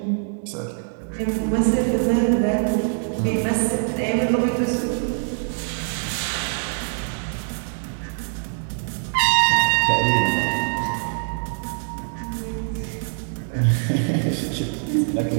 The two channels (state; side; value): silent; left; digital silence